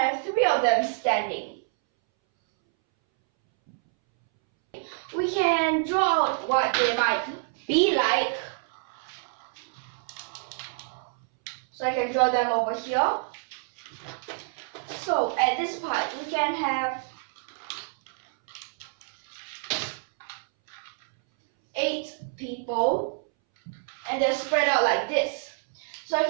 3 of them standing. We can draw out what they might be like. So I can draw them over here. So at this part, we can have 8 people, and they're spread out like this. So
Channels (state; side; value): silent; left; 60 dB below the other